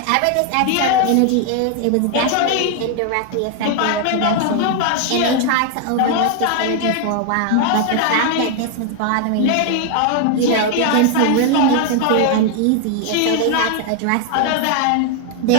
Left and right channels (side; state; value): both; different; correlation 0.00